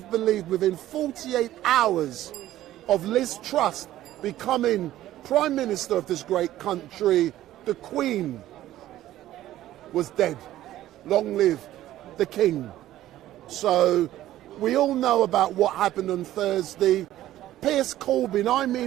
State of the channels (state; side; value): quieter; left; 13.9 dB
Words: believed within 48 hours of Liz Truss becoming Prime Minister of this great country, the Queen was dead. Long live the King. So we all know about what happened on Thursday. Piers Corbyn, I'm